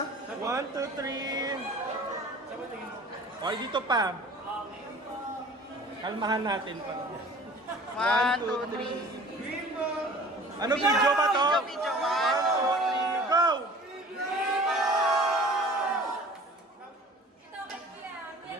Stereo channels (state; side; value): normal; both; correlation 0.46